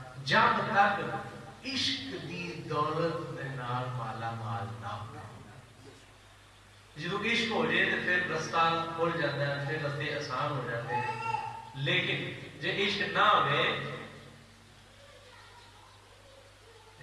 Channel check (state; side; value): identical; both; correlation 1.00